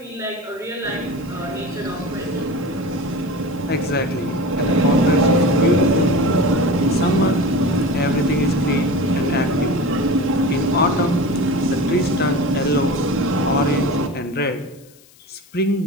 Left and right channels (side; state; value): left; noise; hiss, 27 dB below the sound